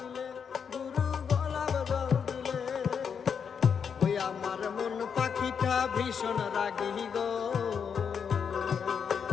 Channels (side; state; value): right; quieter; 6.8 dB